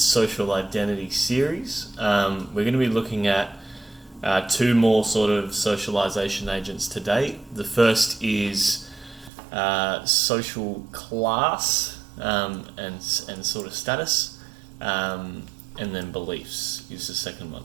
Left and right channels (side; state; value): left; drops out; at 9.3 s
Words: Identity series. We're going to be looking at two more sort of socialization agents today. The first is social class and sort of status, and then beliefs is the second one.